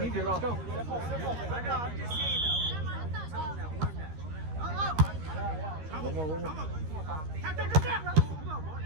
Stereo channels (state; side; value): late; left; 13 ms